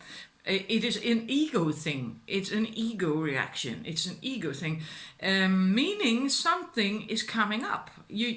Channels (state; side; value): identical; both; correlation 1.00